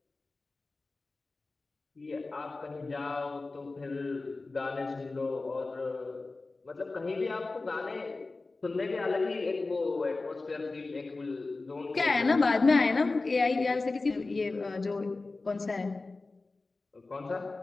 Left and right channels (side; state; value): right; quieter; 3.5 dB